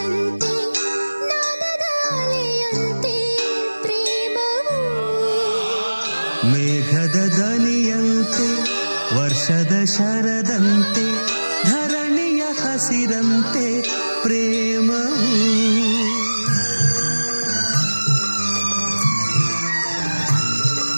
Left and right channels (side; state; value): both; inverted; correlation -1.00